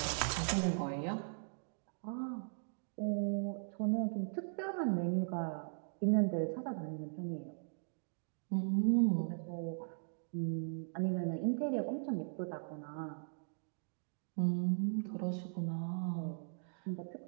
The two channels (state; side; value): silent; left; digital silence